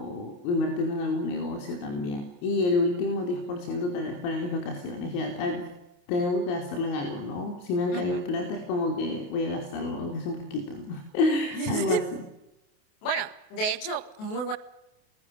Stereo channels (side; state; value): right; late; 28 ms